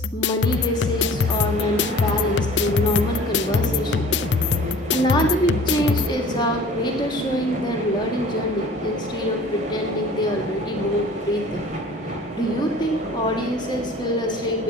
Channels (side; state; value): both; normal; correlation 0.47